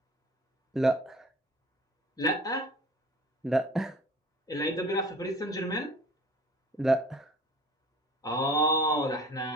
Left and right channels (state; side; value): normal; both; correlation 0.46